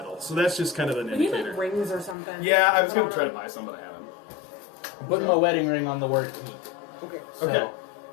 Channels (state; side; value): drops out; right; at 2.1 s